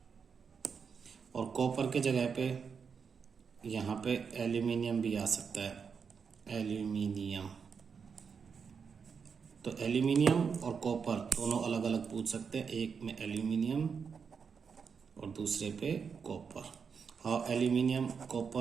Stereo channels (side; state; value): left; quieter; 6.1 dB